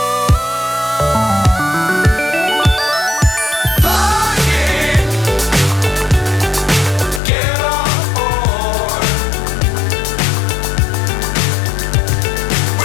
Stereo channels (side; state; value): right; drops out; at 7.2 s